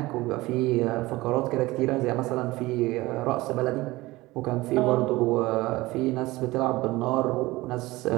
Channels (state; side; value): quieter; left; 19.7 dB